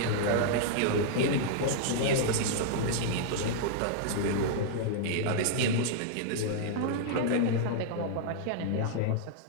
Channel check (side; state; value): both; different; correlation -0.01